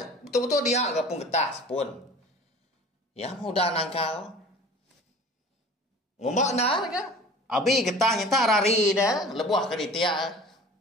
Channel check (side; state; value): both; normal; correlation 0.43